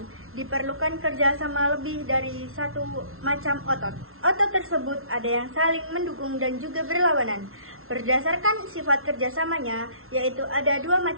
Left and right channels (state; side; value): late; left; 0.62 ms